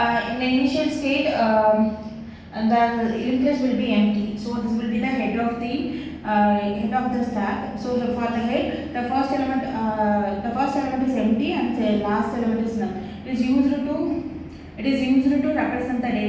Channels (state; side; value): identical; both; correlation 1.00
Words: In the initial state, the linked list will be empty. So this will be the head of the stack. So for the head, the first element is empty and the last element is null. It is used to represent the